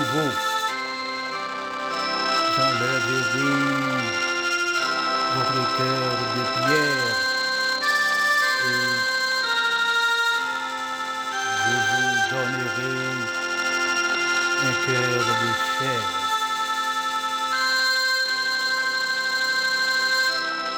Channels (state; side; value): identical; both; correlation 1.00